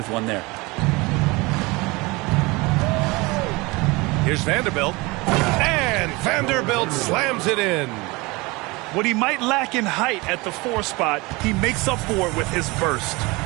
one there. Here's Vanderbilt. And Vanderbilt slams it in. What he might lack in height at the 4 spot, he makes up for it with his burst.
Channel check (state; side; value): quieter; left; 24.2 dB